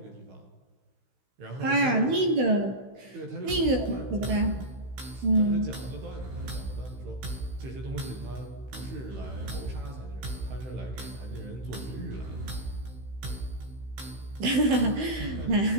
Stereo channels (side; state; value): left; late; 16 ms